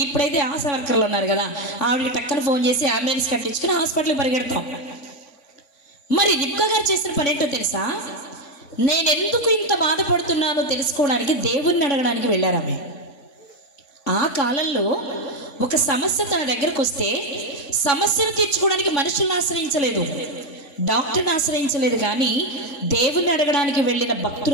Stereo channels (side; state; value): right; late; 3.5 ms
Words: ఇప్పుడైతే ఆశా వర్కర్లు ఉన్నారు కదా, ఆవిడకి టక్కన ఫోన్ చేసి అంబులెన్స్ కట్టించుకుని హాస్పిటల్కి పరిగెడతాం. మరి రిబ్కా గారు చేసిన పని ఏంటో తెలుసా? నేను ఎందుకు ఇంత బాధపడుతున్నానో తెలుసుకోవడానికి దేవుణ్ణి అడగడానికి వెళ్ళారు ఆమె. ఆ కాలంలో ఒక సమస్య తన దగ్గరకు వస్తే సమస్యను తీర్చుకోవడానికి మనుషులను ఆశ్రయించలేదు, డాక్టర్ని ఆశ్రయించలేదు, కానీ దేవుణ్ణి అడగడానికి వెళ్ళిన